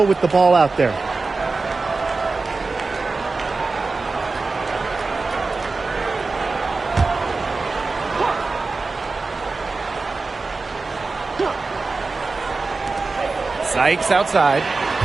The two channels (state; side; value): quieter; left; 3.9 dB